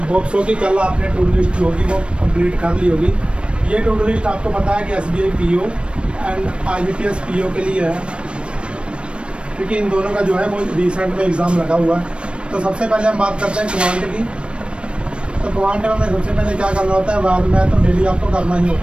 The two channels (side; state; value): left; late; 0.058 ms